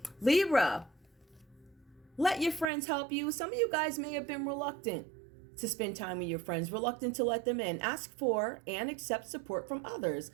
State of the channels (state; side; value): drops out; left; at 2.7 s